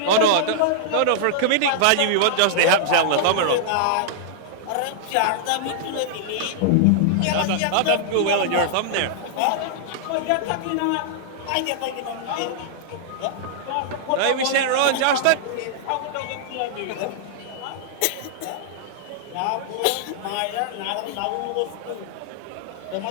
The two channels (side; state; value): both; different; correlation -0.01